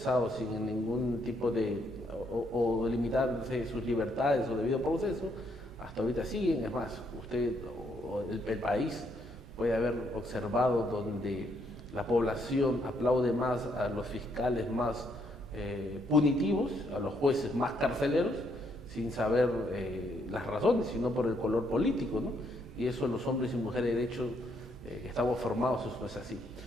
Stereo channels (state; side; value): noise; right; rumble, 18 dB below the sound